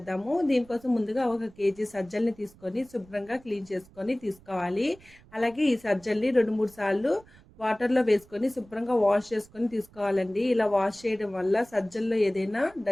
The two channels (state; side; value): noise; right; rumble, 25 dB below the sound